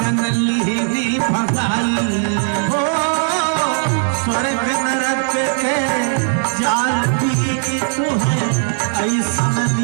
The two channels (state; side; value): silent; left; 61 dB below the other